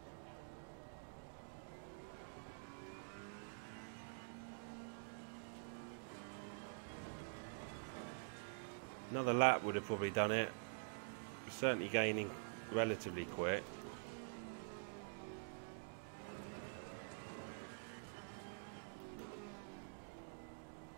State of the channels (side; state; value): left; silent; digital silence